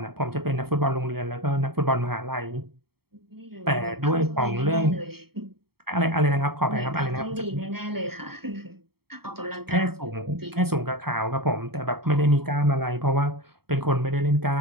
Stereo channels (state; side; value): late; left; 0.95 ms